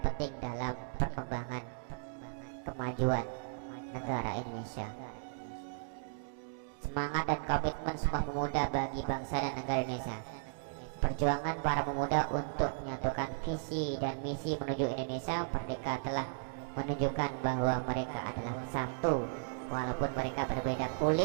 penting dalam perkembangan kemajuan negara Indonesia. Semangat dan komitmen Sumpah Pemuda bagi bangsa dan negara Indonesia. Perjuangan para pemuda untuk menyatukan visi dan misi menuju Indonesia merdeka telah menunjukkan bahwa mereka adalah satu, walaupun mereka berbeda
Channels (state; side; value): silent; left; digital silence